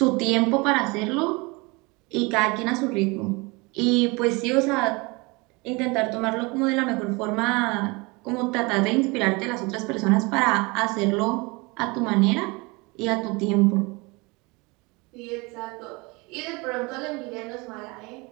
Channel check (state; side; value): quieter; left; 26.4 dB